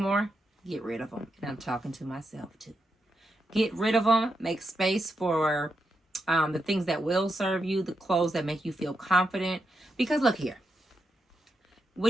get rid of them. And I'm talking to myself too. Get rid of them. Make space for the things that will serve you, the clothes that make you feel confident. Because look here,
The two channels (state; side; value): normal; both; correlation 0.84